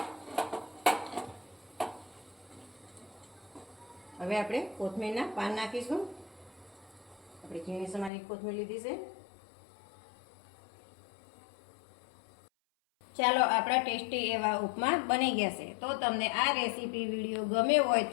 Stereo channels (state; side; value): drops out; right; at 8.1 s